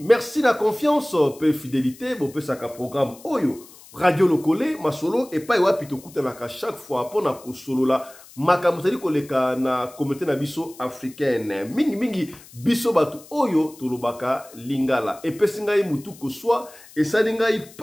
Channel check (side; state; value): left; noise; hiss, 22 dB below the sound